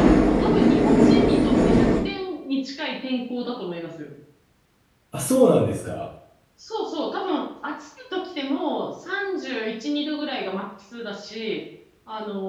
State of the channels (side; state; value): both; identical; correlation 1.00